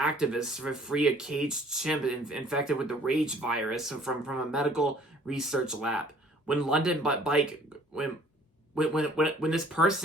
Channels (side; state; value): both; normal; correlation 0.56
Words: free a caged chimp infected with the rage virus from a medical research lab. When London Bike when this